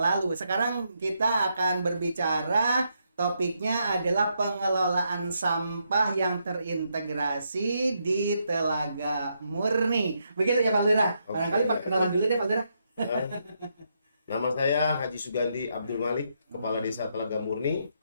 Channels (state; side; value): inverted; both; correlation -0.79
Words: Sekarang kita akan berbicara. Topiknya adalah pengelolaan sampah yang terintegrasi di Telaga Murni. Begitu ya Pak Lurah? Barangkali perkenalan dulu deh Pak Lurah. Nama saya Haji Sugandi Abdul Malik, Kepala Desa Telaga Murni,